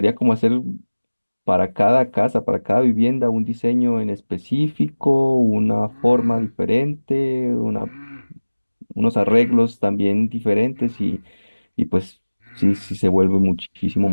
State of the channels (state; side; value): inverted; both; correlation -1.00